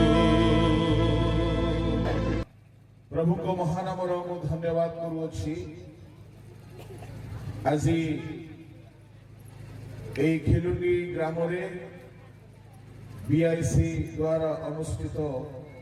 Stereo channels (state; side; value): identical; both; correlation 1.00